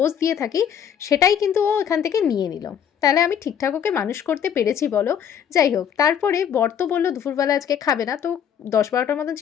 দিয়ে থাকি সেটাই কিন্তু ও এখান থেকে নিয়ে নিল। তাহলে আমি ঠিকঠাক ওকে মানুষ করতে পেরেছি বলো? যাই হোক, তারপরে বর তো বললো দুপুরবেলা আজকে খাবে না, তো 10-12টার মতন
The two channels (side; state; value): right; quieter; 8.6 dB